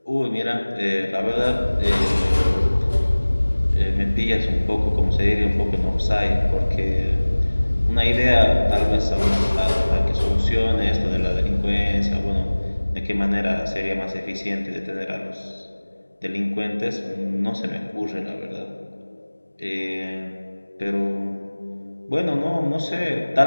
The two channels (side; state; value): both; inverted; correlation -1.00